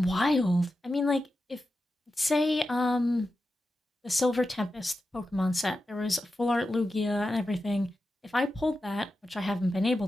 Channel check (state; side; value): normal; both; correlation 0.91